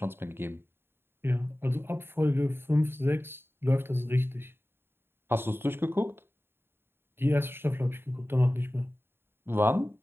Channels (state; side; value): late; left; 0.11 ms